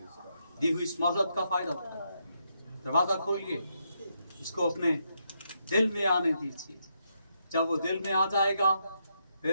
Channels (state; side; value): inverted; both; correlation -0.80